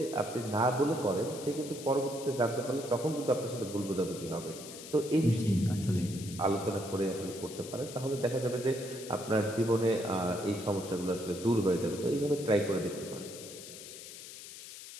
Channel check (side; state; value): left; noise; hiss, 13 dB below the sound